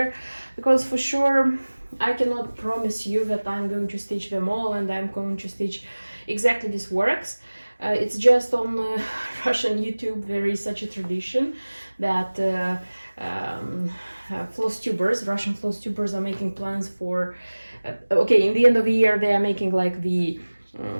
because for sure I cannot promise you that I'm going to stitch them all and I'm going to stitch exactly these works. It's just on Russian YouTube there is such a tradition that Russian floss tubers are making plans for okay, in the end of the year they are making like the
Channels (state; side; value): inverted; both; correlation -1.00